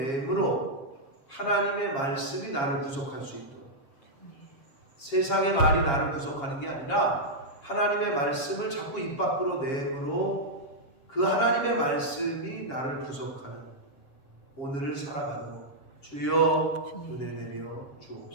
하나님의 말씀이 나를 구속할 수 있도록, 세상의 말이 나를 구속하는 게 아니라 하나님의 말씀을 자꾸 입 밖으로 내므로 그 하나님의 말씀이 나를 구속하는 오늘을 살아가도록 주여 은혜 내려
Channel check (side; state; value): right; late; 7.3 ms